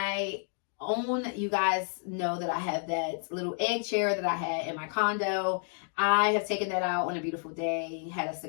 own, you guys know that I have that little egg chair that I had in my condo. I have taken that out on a beautiful day, had a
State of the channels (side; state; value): right; silent; 55 dB below the other